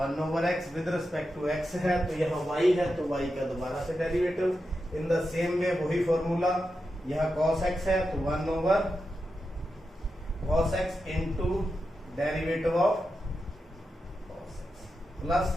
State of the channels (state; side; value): normal; both; correlation 0.89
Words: With respect to x है, तो यहाँ y है, तो y का दोबारा से derivative. In the same way वही फॉर्मूला, यहाँ cos x है, तो 1/cos x into derivative of cos x, plus